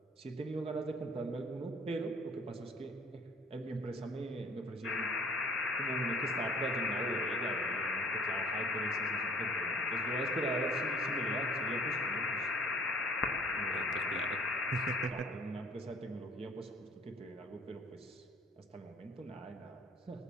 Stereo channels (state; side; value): normal; both; correlation 0.53